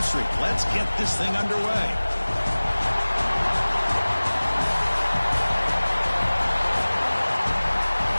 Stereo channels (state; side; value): inverted; both; correlation -1.00